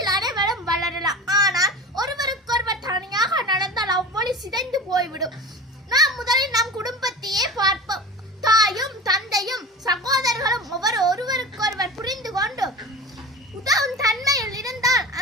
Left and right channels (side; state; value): both; normal; correlation 0.33